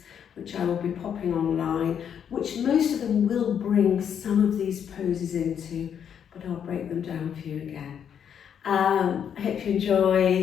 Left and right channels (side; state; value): right; quieter; 8.3 dB